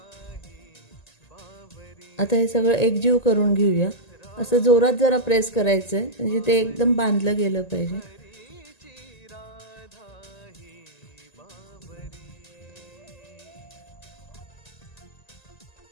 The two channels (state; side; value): late; right; 1.9 ms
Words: आता हे सगळं एकजीव करून घेऊया। असं जोरात जरा प्रेस करायचं म्हणजे ते एकदम बांधलं गेलं पाहिजे।